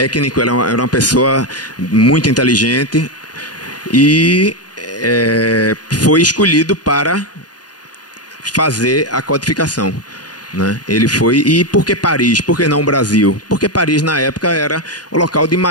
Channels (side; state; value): right; late; 0.69 ms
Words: era uma pessoa muito inteligente e foi escolhido para fazer a codificação, né? Ele foi. E por que Paris? Por que não o Brasil? Porque Paris na época era o local de